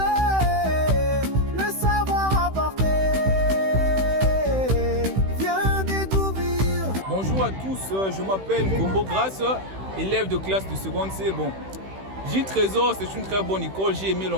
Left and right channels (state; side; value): late; left; 16 ms